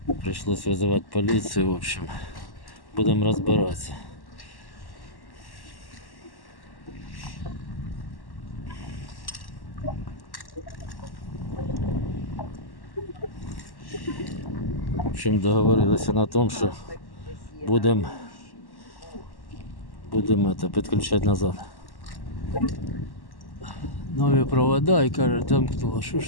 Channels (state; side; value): late; right; 1.1 ms